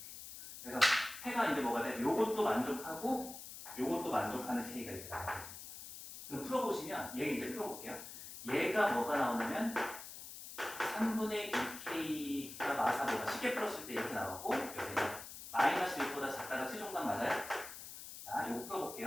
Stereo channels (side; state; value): left; noise; hiss, 12 dB below the sound